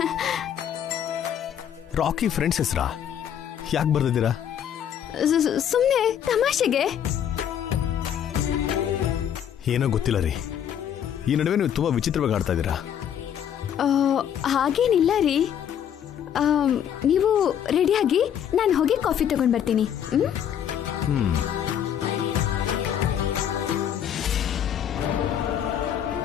ರಾಕಿ ಫ್ರೆಂಡ್ಸ್ ಹೆಸರಾ? ಯಾಕೆ ಬರ್ದಿದ್ದೀರಾ? ಸುಮ್ಮನೆ ತಮಾಷೆಗೆ. ಏನೋ ಗೊತ್ತಿಲ್ಲ ರೀ, ಈ ನಡುವೆ ನೀವು ತುಂಬಾ ವಿಚಿತ್ರವಾಗಿ ಆಡ್ತಾ ಇದ್ದೀರಾ. ಹಾಗೇನಿಲ್ಲ ರೀ. ನೀವು ರೆಡಿಯಾಗಿ ನಾನು ಹೋಗಿ ಕಾಫಿ ತಗೊಂಡ್ ಬರ್ತೀನಿ.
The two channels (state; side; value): quieter; right; 9.3 dB